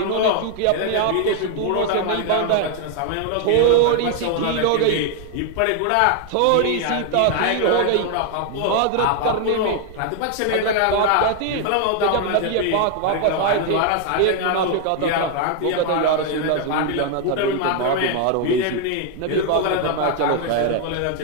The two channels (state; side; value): different; both; correlation 0.00